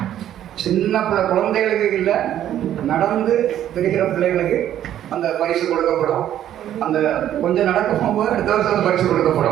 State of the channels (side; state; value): left; quieter; 11.4 dB